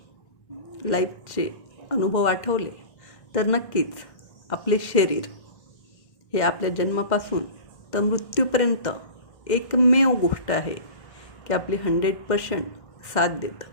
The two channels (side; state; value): right; late; 1.6 ms